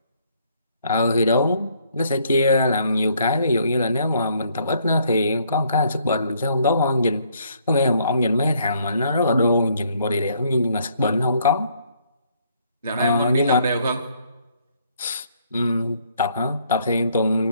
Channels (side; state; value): both; inverted; correlation -0.67